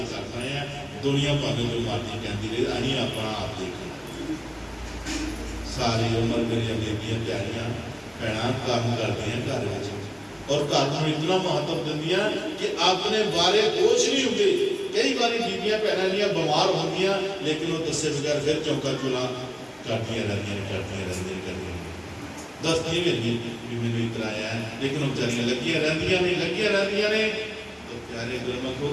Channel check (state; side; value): identical; both; correlation 1.00